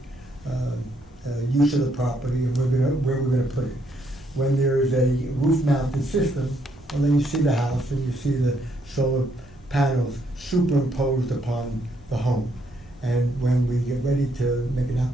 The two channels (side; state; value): both; normal; correlation 0.73